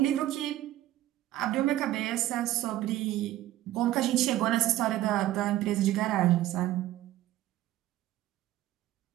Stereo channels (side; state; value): left; quieter; 14.6 dB